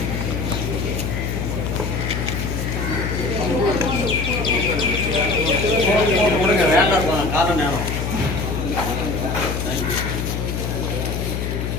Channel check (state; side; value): noise; left; hum, 2 dB below the sound